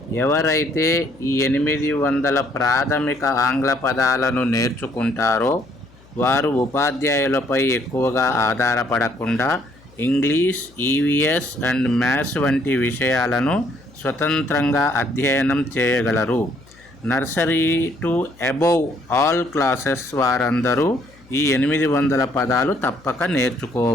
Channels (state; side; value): noise; left; hum, 27 dB below the sound